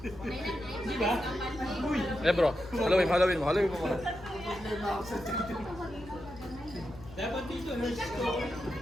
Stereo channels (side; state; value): left; noise; hum, 17 dB below the sound